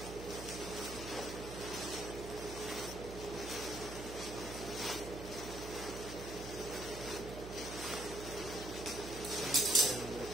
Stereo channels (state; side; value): noise; right; hum, 9 dB below the sound